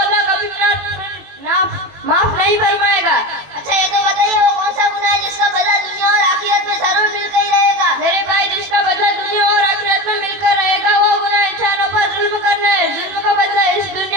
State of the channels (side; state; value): left; late; 21 ms